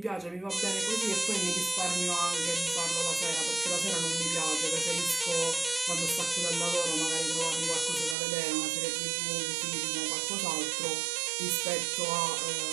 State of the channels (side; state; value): left; drops out; at 8.2 s